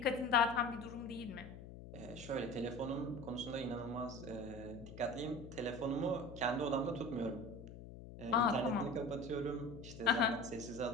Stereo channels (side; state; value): left; noise; hum, 13 dB below the sound